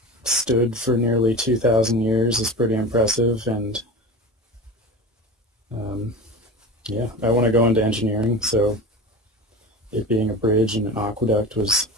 stood for nearly 2,000 years is pretty impressive, and yeah, I want to go into engineering, so it being a bridge and an aqueduct was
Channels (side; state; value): both; normal; correlation 0.31